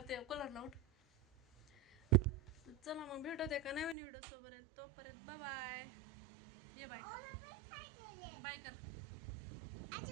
ते कूलरला उठ. चला मग भेटत एका नवीन व्हिडिओ सोबत. तोपर्यंत बाय. ये बाय बाय कर.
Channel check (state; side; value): drops out; left; at 4.0 s